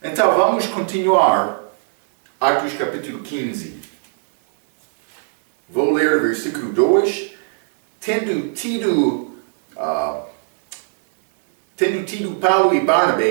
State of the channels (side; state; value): left; silent; digital silence